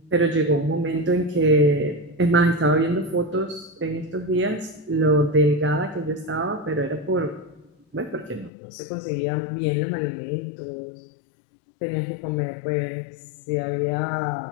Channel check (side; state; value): right; drops out; at 8.5 s